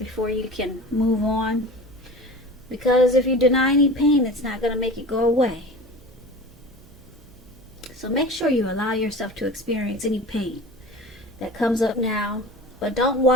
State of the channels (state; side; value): noise; right; hum, 24 dB below the sound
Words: you can move on. Because if you deny any pain, it's not going to make it go away. So make sure you allow yourself to experience any pain that comes up now, but don't